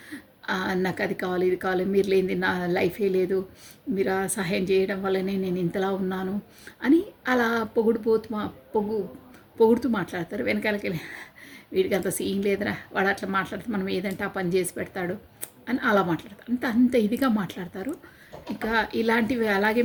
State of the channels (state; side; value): identical; both; correlation 1.00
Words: నాకు అది కావాలి, ఇది కావాలి, మీరు లేనిది నా లైఫే లేదు, మీరు సహాయం చేయడం వల్లనే నేను ఇంతలా ఉన్నాను అని అలా పొగుడుతూ మాట్లాడతారు. వెనకాలకి వెళ్ళి వీడికి అంత సీన్ లేదురా, వాడు అట్లా మాట్లాడితే మనం ఏదంటే ఆ పని చేసి పెడతాడు అని అలా మాట్లాడతారు. అంత ఇదిగా మాట్లాడతారు. ఇంకా ఇలాంటివి అలాగే